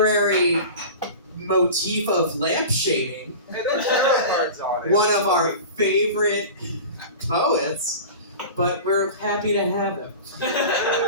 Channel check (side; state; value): both; inverted; correlation -0.34